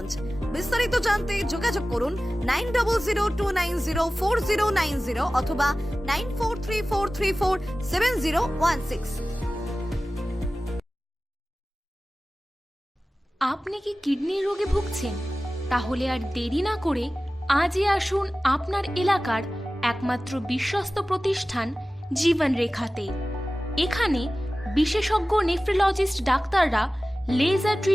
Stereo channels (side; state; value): both; normal; correlation 0.96